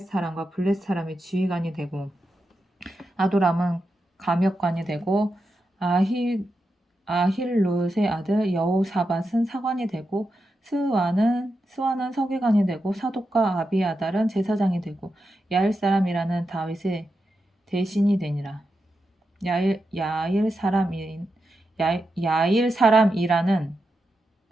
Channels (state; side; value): normal; both; correlation 0.87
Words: 사람과 블렛 사람의 지휘관이 되고 아도람은 감역관이 되고 아힐롯의 아들 여호사밧은 사관이 되고 스와는 서기관이 되고 사독과 아비아달은 제사장이 되고 야일 사람이라는 다윗의 대신이 되니라. 야일 사람이라는